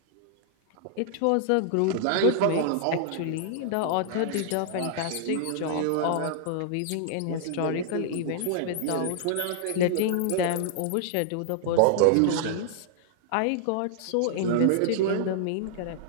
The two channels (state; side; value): different; both; correlation -0.01